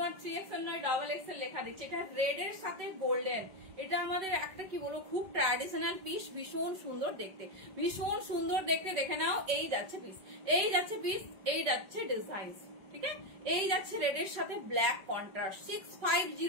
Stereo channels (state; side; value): late; left; 5.2 ms